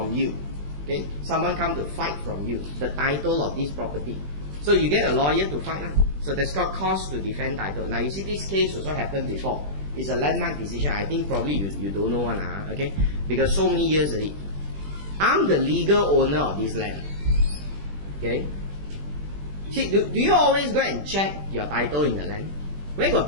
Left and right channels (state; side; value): late; left; 20 ms